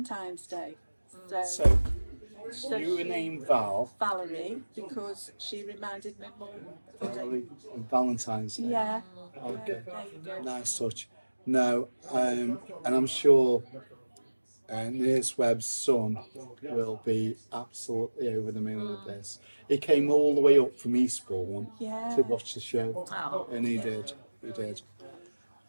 Day. So you were named Val. Valerie, because she reminded me mum. Valerie and Valentine's Day. Yeah. Okay. There you go. Nice touch. No, and I'm sure Nurse Webb's son will be absolutely over the moon with this. He came all the way up from Eastbourne to watch the show, and he did.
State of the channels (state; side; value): inverted; both; correlation -1.00